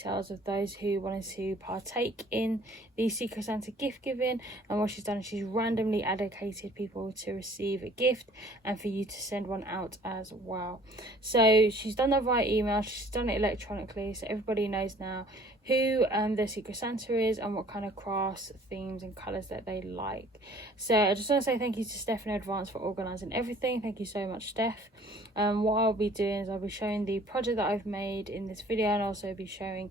of those who wanted to partake in the Secret Santa gift giving, and what she's done is she's randomly allocated people to receive a gift and for you to send one out as well. So she's done that via email, she's done it electronically, so everybody knows now who the Secret Santa is and what kind of crafts, themes and colours that they like. So I just want to say thank you to Steph in advance for organising everything. Thank you so much, Steph. What I'll be doing is I'll be showing the project that I've made in this video, and also be showing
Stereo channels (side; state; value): both; normal; correlation 0.54